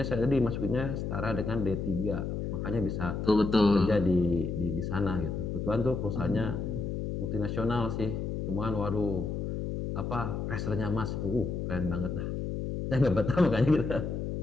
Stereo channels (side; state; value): left; noise; hum, 3 dB below the sound